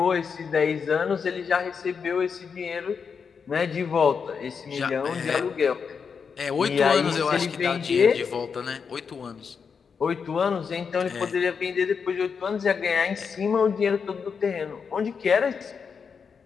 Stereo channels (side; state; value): right; quieter; 6.1 dB